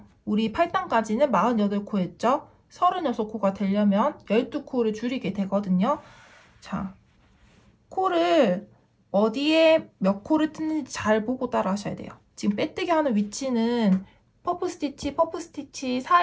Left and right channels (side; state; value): both; identical; correlation 1.00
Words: 우리 8단까지는 48코였죠. 36코가 되려면 12코를 줄이게 되거든요. 자, 코를 어디에 몇 코를 뜯는지 잘 보고 따라 하셔야 돼요. 지금 빼뜨기 하는 위치는 퍼프 스티치